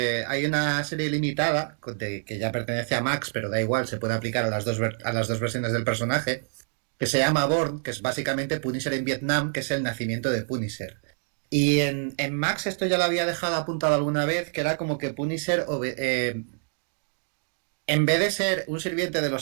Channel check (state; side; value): silent; left; 60 dB below the other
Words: una serie limitada que ya pertenece a Max, pero da igual, se puede aplicar a a las dos versiones del personaje, que se llama Born, que es básicamente Punisher en Vietnam, que es el nacimiento de Punisher. Y en Max esto ya lo había dejado apuntado alguna vez, que era como que Punisher en vez de ser un sirviente de